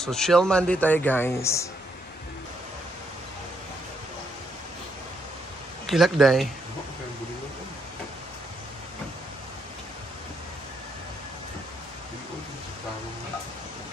chill Monday tayo guys. Kilak day.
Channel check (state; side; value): normal; both; correlation 0.76